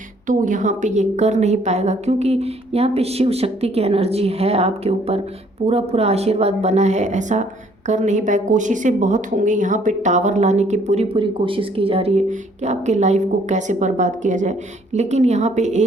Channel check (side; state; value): both; normal; correlation 0.62